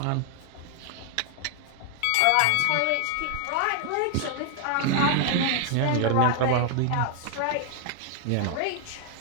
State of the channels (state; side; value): different; both; correlation 0.00